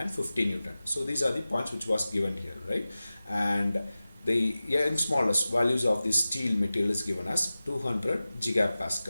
50 Newton. So these are the points which was given here, right? And the smallest values of the steel material is given as 200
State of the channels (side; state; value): both; inverted; correlation -0.96